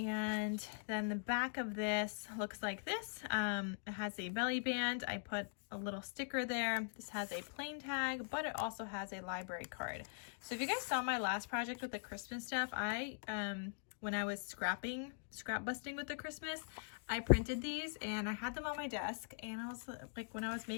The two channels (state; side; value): silent; right; digital silence